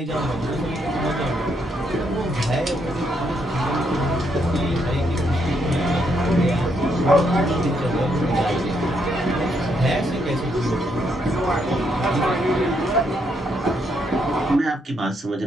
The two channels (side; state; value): both; normal; correlation 0.76